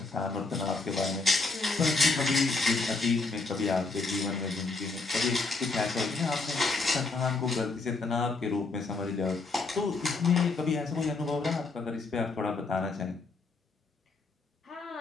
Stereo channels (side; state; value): right; quieter; 3.7 dB